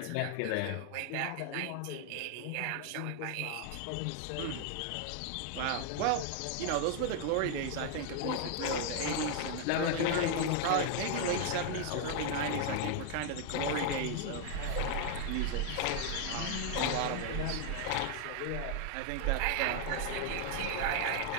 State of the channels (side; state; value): both; different; correlation 0.00